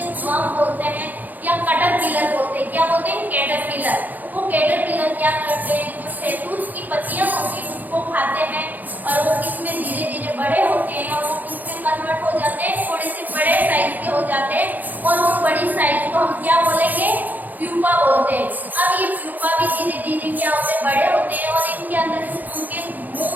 वर्म बोलते हैं या कैटरपिलर बोलते हैं। क्या बोलते हैं? कैटरपिलर। वो कैटरपिलर क्या करते हैं, जो शहतूत की पत्तियां होती हैं उसको खाते हैं और वो इसमें धीरे धीरे बड़े होते हैं और वो इसमें कन्वर्ट हो जाते हैं, थोड़े से बड़े साइज के हो जाते हैं और वो बड़ी साइज को हम क्या बोलेंगे? प्यूपा बोलते हैं। अब ये प्यूपा भी धीरे धीरे क्या होते हैं? बड़े होते हैं और इनके अंदर उनके मुंह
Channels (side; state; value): left; late; 0.083 ms